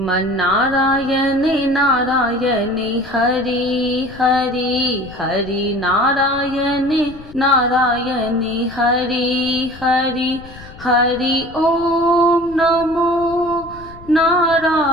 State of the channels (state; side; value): noise; left; rumble, 19 dB below the sound